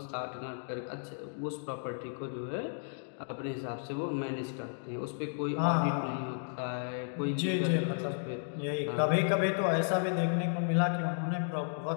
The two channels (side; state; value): right; silent; digital silence